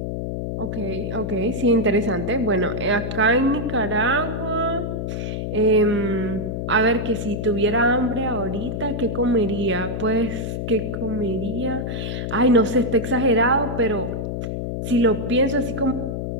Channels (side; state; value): left; noise; hum, 3 dB below the sound